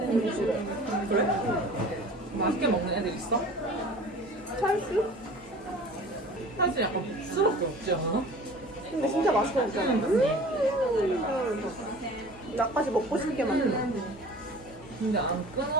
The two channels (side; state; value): both; normal; correlation 0.43